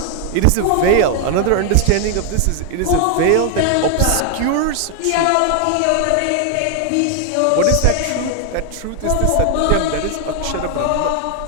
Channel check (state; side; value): different; both; correlation 0.00